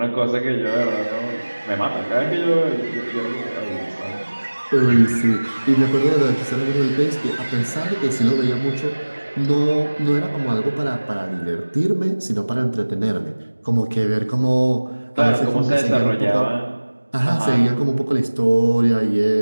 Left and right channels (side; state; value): both; inverted; correlation -1.00